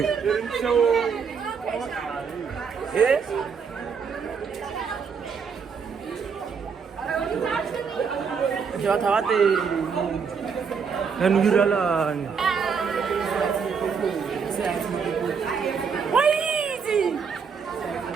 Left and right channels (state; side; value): quieter; left; 6.1 dB